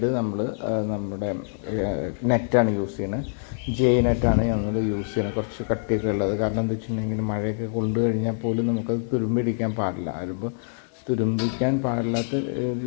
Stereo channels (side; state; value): right; silent; digital silence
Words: നമ്മൾ നമ്മുടെ നെറ്റാണ് യൂസ് ചെയ്യുന്നത്. ജെ നെറ്റാണ് ഞങ്ങൾ യൂസ് ചെയ്യുന്നത്, കുറച്ച് കട്ടിയൊക്കെ ഉള്ളത്. കാരണം എന്താ വെച്ചിട്ടുണ്ടെങ്കിൽ മഴയൊക്കെ കൊണ്ടു കഴിഞ്ഞാൽ പോലും നമുക്കത് തുരുമ്പിടിക്കാൻ പാടില്ല. അതിപ്പോൾ തുരുമ്പിക്കാൻ പാടില്ലാത്ത